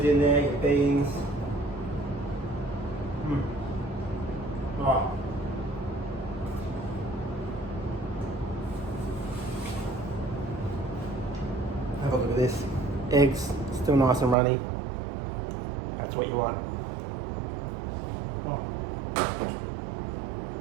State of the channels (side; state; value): left; drops out; at 14.4 s